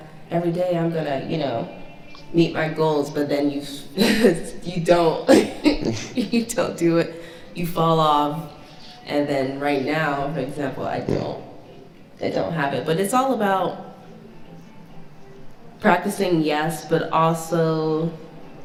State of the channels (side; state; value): both; identical; correlation 1.00